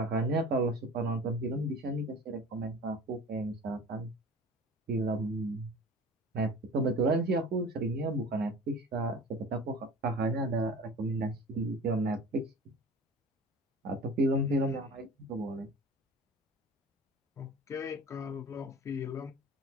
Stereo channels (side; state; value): both; normal; correlation 0.40